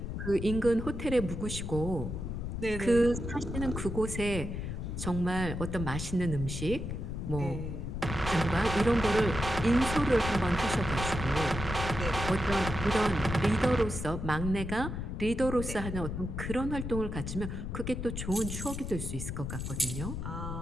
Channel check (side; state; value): left; noise; rumble, 5 dB below the sound